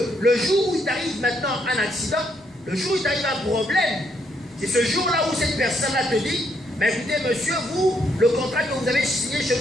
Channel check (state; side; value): normal; both; correlation 0.74